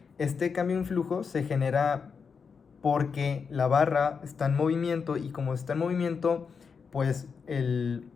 este cambio en flujo se genera porque la barra está en movimiento y como está en movimiento, pues el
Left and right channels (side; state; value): right; quieter; 5.8 dB